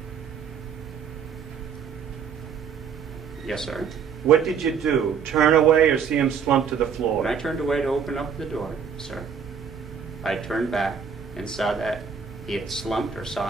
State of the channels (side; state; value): left; quieter; 6.8 dB